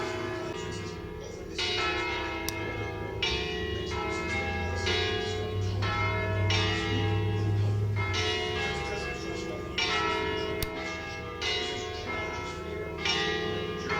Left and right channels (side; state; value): both; identical; correlation 1.00